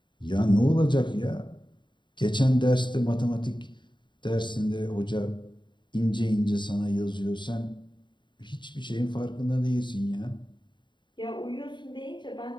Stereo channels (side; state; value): right; late; 0.23 ms